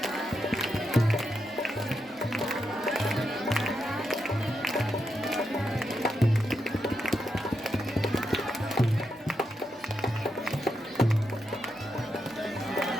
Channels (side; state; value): both; normal; correlation 0.84